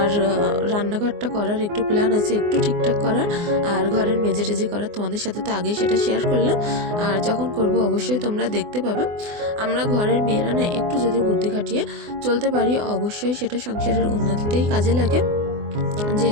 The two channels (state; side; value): late; left; 24 ms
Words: রান্নাঘরটা করার একটু প্ল্যান আছে, একটু ঠিকঠাক করার, আর ঘরের মেজে টেজে করার। তোমাদের সাথে তো আগেই সেটা শেয়ার করলাম, আর যখন করব অবশ্যই তোমরা দেখতে পাবে। আমরা ঘরের মেয়েরা না একটু যদি বুদ্ধি খাটিয়ে চলতে পারি, অবশ্যই সেটা সংসারের উন্নতিতেই কাজে লাগে।